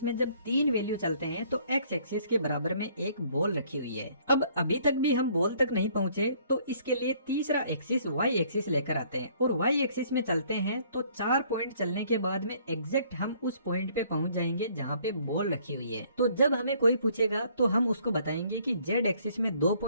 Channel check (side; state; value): both; inverted; correlation -0.61